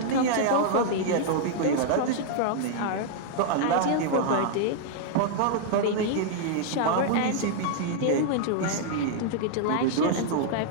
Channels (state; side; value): different; both; correlation -0.01